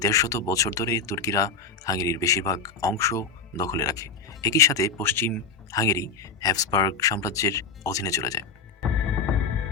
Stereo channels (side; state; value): right; quieter; 5.1 dB